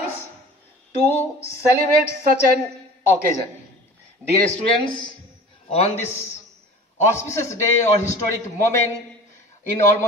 to celebrate such an occasion. Dear students, on this auspicious day or historic moment in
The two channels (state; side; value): normal; both; correlation 0.41